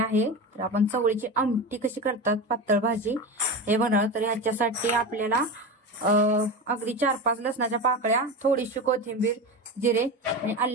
तर आपण चवळीची आमटी कशी करतात पातळ भाजी हे बनवणार। तर ह्याच्यासाठी आपल्याला अगदी 4-5 लसणाच्या पाकळ्या, थोडीशी कोथिंबीर, जिरे आणि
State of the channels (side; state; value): both; normal; correlation 0.24